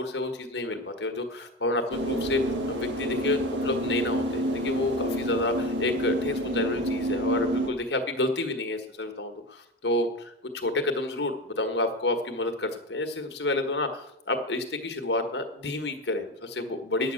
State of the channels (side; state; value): both; normal; correlation 0.24